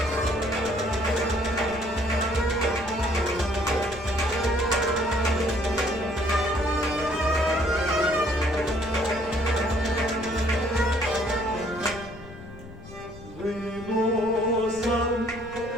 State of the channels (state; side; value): noise; left; rumble, 17 dB below the sound